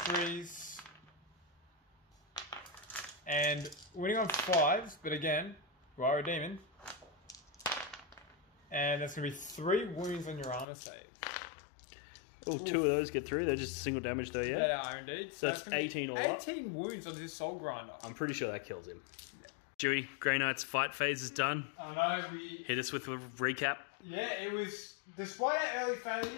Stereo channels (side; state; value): right; drops out; at 10.7 s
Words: And winning on 5s, but again, you are a demon. And that's going to be 3 wounds on your armor save. Oh, 2 of those get through. They're just single damage though, yeah? They are indeed. So that's 18 all up. 18 wounds on this Soul Grinder. I'm pretty sure that kills him. Yeah. Dewey, Grey Knight's fight phase is done. I know, we... Hit us with a recap. Yeah, it was... Despite our early